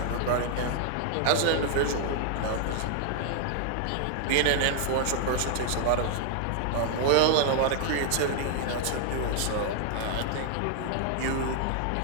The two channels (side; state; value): both; different; correlation 0.00